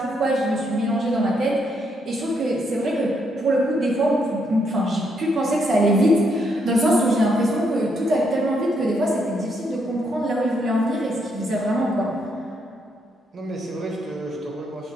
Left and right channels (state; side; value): normal; both; correlation 0.76